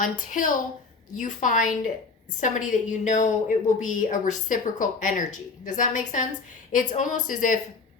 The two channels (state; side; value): quieter; right; 4.4 dB